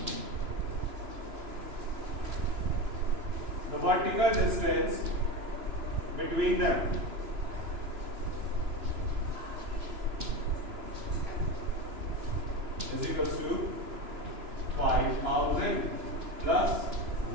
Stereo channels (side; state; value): left; late; 2.9 ms